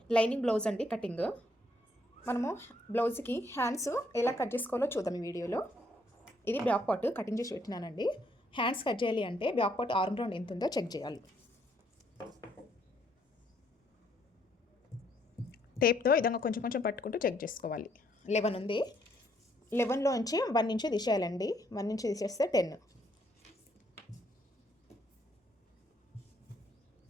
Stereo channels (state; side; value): normal; both; correlation 0.70